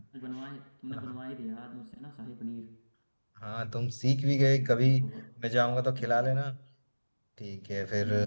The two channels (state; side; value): inverted; both; correlation -1.00